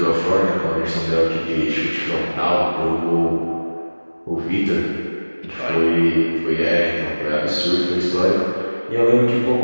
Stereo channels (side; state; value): both; inverted; correlation -1.00